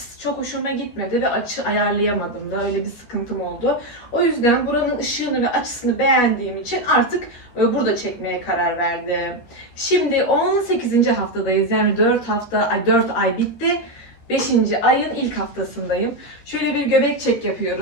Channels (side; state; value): right; late; 13 ms